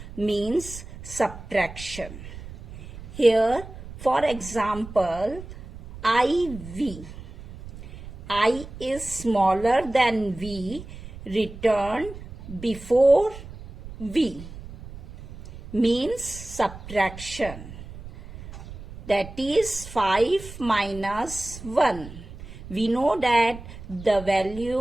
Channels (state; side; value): noise; right; rumble, 14 dB below the sound